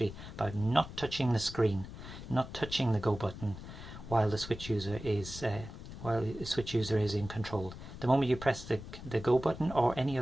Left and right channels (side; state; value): left; noise; rumble, 12 dB below the sound